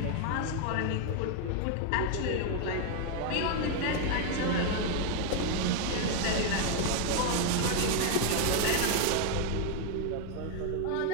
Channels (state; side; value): different; both; correlation 0.01